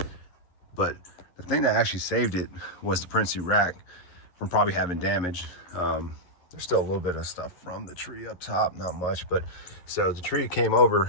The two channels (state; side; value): late; right; 11 ms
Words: But the thing that actually saved it was the Prinsu rack from probably having damage. There's still a little bit of stuff from the tree up top, not much, but so the tree came